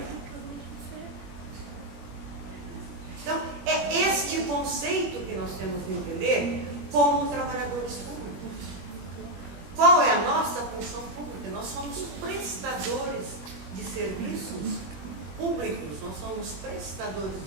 Então, é este conceito que nós temos que entender como trabalhadores públicos. Qual é a nossa função pública? Nós somos prestadores de serviços públicos, nós somos prestadores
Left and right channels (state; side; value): late; left; 21 ms